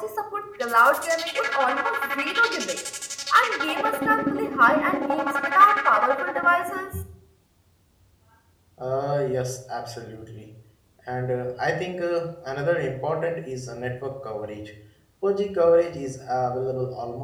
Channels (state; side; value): identical; both; correlation 1.00